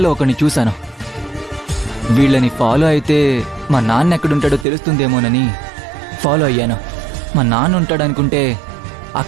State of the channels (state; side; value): drops out; left; at 4.7 s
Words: ఒకరిని చూశాను. వీళ్ళని ఫాలో అయితే మా నాన్న ఎక్కడుంటాడో తెలుస్తుందేమోనని ఫాలో అయ్యాను. మా నాన్న ఉంటాడనుకుంటే